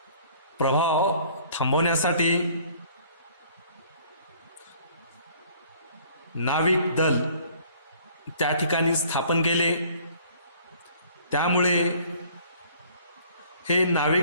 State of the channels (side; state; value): both; inverted; correlation -0.55